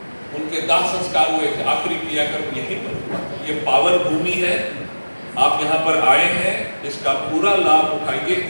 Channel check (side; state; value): both; inverted; correlation -1.00